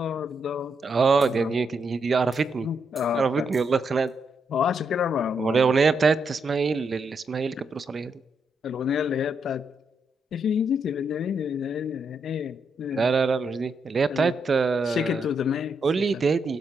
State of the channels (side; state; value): both; normal; correlation 0.80